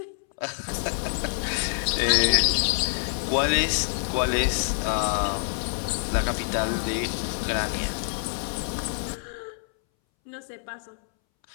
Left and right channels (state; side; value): silent; right; 61 dB below the other